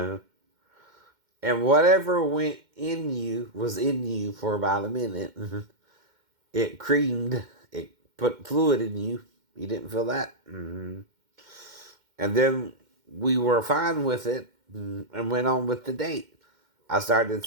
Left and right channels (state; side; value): late; left; 2.1 ms